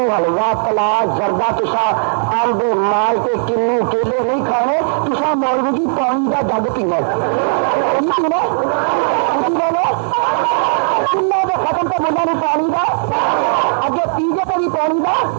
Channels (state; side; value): silent; left; 68 dB below the other